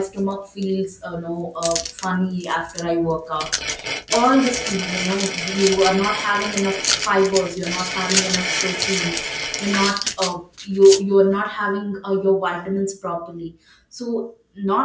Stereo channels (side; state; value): both; identical; correlation 1.00